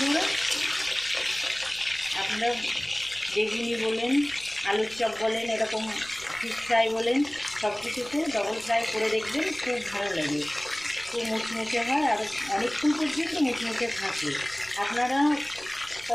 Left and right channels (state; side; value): noise; left; rumble, 25 dB below the sound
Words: আপনারা বেগুনি বলেন, আলুর চপ বলেন, এরকম ফিশ ফ্রাই বলেন, সব কিছুতে ডবল ফ্রাই করে দেখবেন, খুব ভালো লাগে। খুব মুচমুচে হয় আর অনেকক্ষণ পর্যন্ত মুচমুচে থাকে। আপনারা